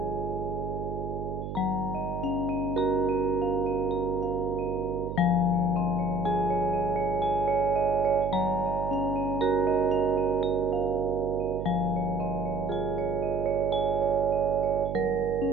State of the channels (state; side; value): noise; right; hum, 6 dB below the sound